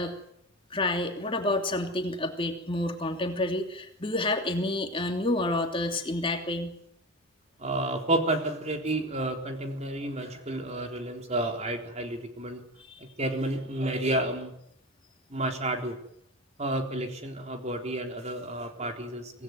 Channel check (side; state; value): both; normal; correlation 0.25